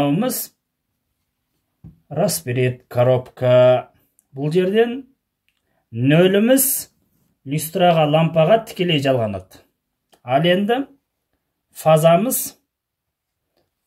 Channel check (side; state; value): both; identical; correlation 1.00